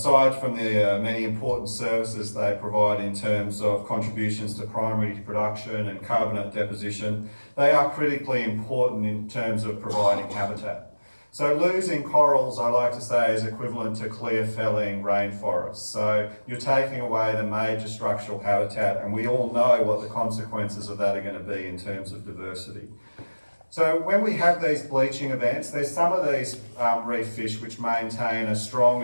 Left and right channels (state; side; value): inverted; both; correlation -1.00